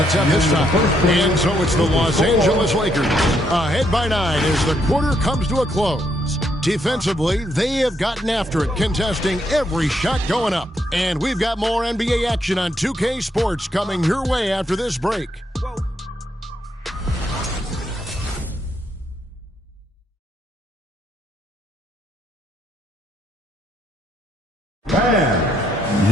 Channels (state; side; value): normal; both; correlation 0.75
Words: attempt this time. And so it's the Los Angeles Lakers. Ahead by 9 as the quarter comes to a close. Defensively, they have gotten after it, contesting every shot going up. And we've got more NBA action on 2K Sports coming your way after this break.